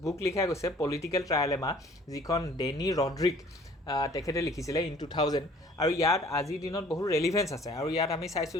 বুক লিখা গৈছে, পলিটিকেল ট্ৰাইলেমা, যিখন ডেনি ৰড্ৰিক তেখেতে লিখিছিলে ইন 2000, আৰু ইয়াত আজিৰ দিনত বহুত ৰেলিভেঞ্চ আছে। আৰু ইয়াত আমি চাইছোঁ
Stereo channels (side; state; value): both; normal; correlation 0.53